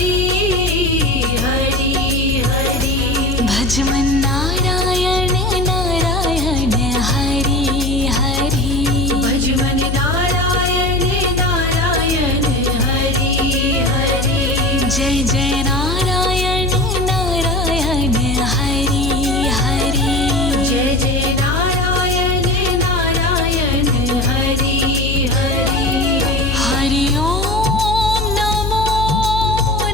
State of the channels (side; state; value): left; noise; hum, 2 dB below the sound